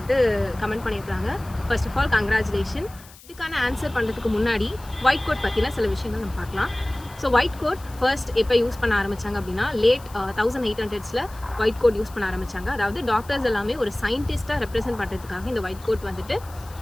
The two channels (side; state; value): left; noise; hiss, 22 dB below the sound